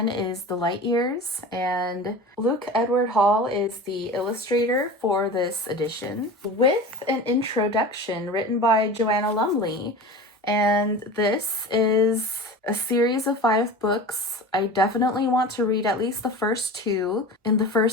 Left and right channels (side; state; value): both; normal; correlation 0.34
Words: is The Light Years, and Luke Edward Hall is the illustrator for this edition, with an introduction written by Joanna Lumley. And this is a series of 5 books. I definitely want to read at least the first 2 in the